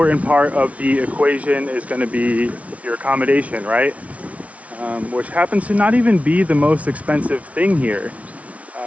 part of the equation is going to be your accommodation, right? Which happens to not even be the most expensive thing here.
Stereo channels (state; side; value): late; left; 0.066 ms